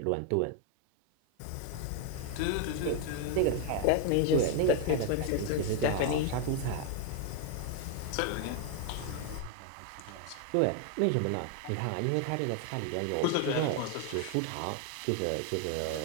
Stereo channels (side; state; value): both; different; correlation 0.00